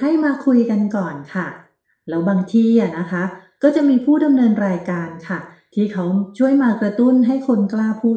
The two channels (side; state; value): both; identical; correlation 1.00